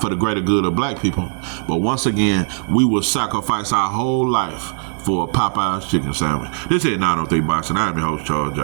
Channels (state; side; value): silent; left; digital silence